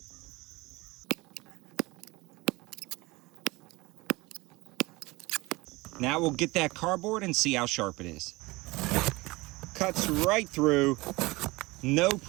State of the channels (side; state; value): left; quieter; 22.3 dB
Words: now we'll get that cardboard and see how sharp it is. Cuts right through, no